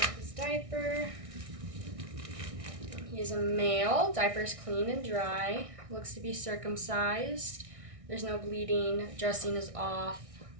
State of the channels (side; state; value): left; late; 1.6 ms